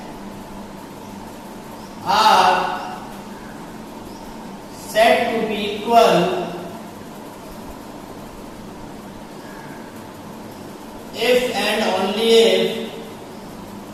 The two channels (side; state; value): both; identical; correlation 1.00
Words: are equal if and only